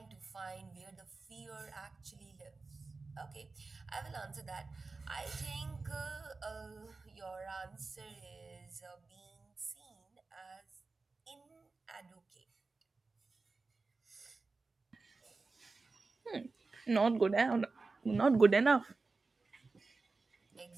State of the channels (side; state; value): left; quieter; 3.9 dB